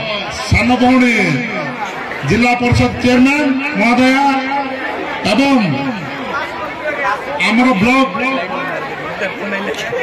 सान भौणी जिला परिषद चेयरमैन महोदया एवं आमर ब्लॉक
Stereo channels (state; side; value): identical; both; correlation 1.00